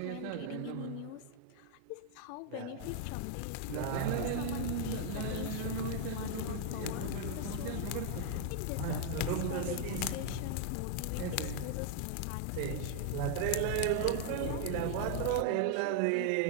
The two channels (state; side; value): different; both; correlation 0.00